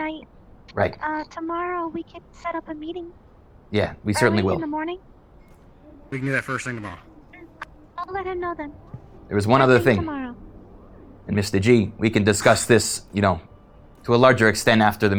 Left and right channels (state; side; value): identical; both; correlation 1.00